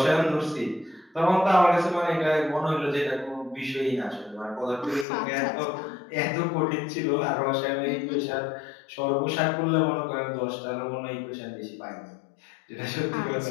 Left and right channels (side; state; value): right; drops out; at 5.1 s